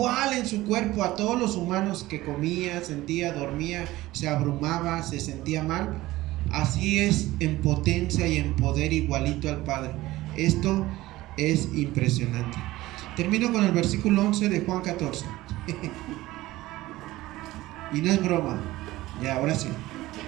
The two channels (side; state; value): left; quieter; 17.5 dB